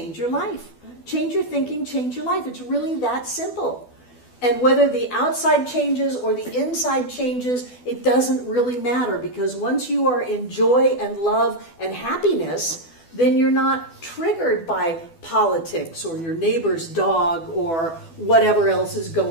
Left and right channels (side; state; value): right; late; 12 ms